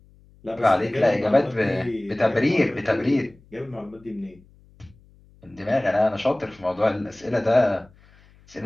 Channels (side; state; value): left; noise; hum, 28 dB below the sound